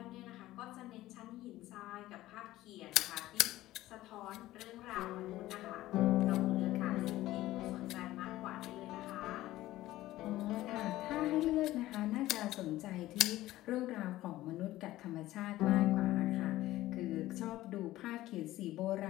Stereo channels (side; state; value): right; quieter; 16.0 dB